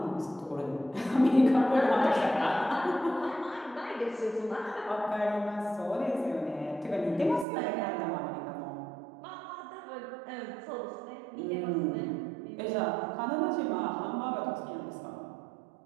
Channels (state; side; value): drops out; left; at 7.5 s